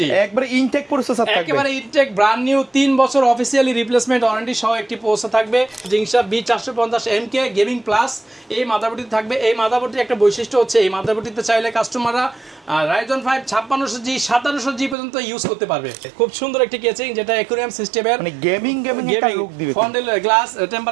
একবারে ইনটেক প্রসেসর থাকবে, একেবারে ইনটেক ব্র্যান্ড নিউ 3 বছর অফিশিয়ালি রিপ্লেসমেন্ট ওয়ারেন্টি সহ একটি প্রসেসর থাকবে জিংসা B450MK গেমিং প্লাস। এই মাদারবোর্ডটি থাকবে। এই মাদারবোর্ডটির একটা বৈশিষ্ট্য হচ্ছে এই মাদারবোর্ডটিতে চাইলে কাস্টমাররা রাইজন 5 5600G 5700G পর্যন্ত ইউজ করতে পারবে। খুব সুন্দর একটি কেচিং যেটা অ্যাকুরিয়াম সিস্টেমের, মানে গেমিং একটা লুক দিবে। ফন্ডেল গ্লাস,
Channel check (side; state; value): left; drops out; at 15.0 s